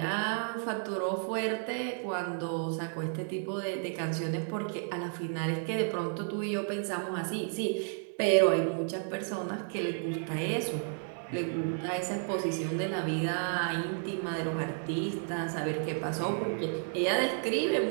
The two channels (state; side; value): silent; left; 56 dB below the other